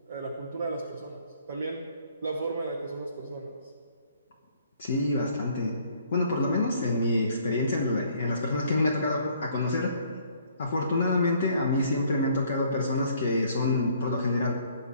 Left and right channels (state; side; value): inverted; both; correlation -0.62